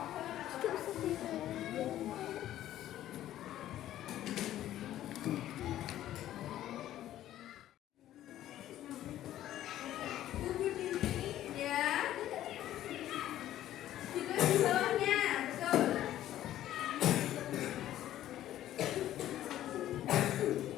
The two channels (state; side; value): quieter; right; 12.9 dB